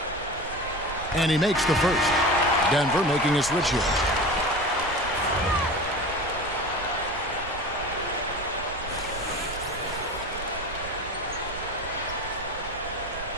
And he makes the first. Denver making a switch here.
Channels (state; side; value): noise; right; rumble, 12 dB below the sound